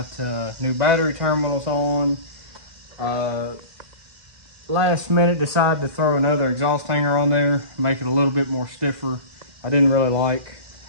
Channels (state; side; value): late; left; 2.0 ms